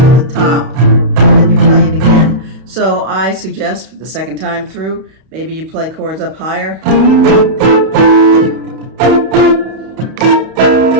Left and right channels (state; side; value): late; left; 31 ms